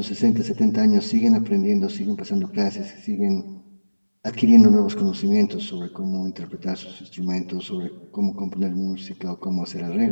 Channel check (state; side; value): inverted; both; correlation -1.00